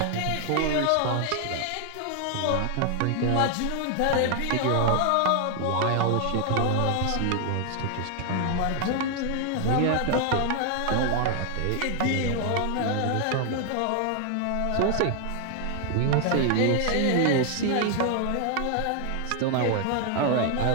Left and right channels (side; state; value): both; different; correlation 0.00